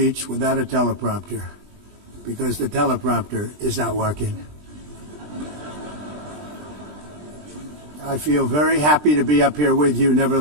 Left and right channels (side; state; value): left; late; 20 ms